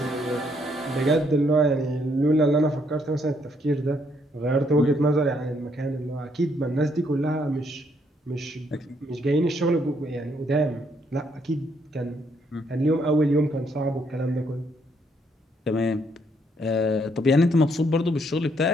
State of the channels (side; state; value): both; normal; correlation 0.71